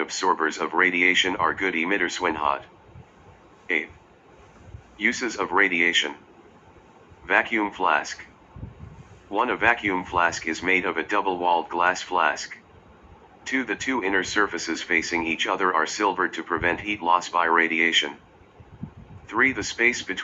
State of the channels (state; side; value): identical; both; correlation 1.00